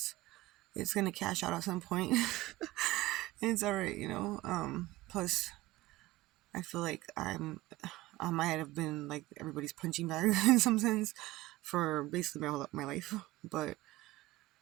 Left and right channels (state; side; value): quieter; left; 18.5 dB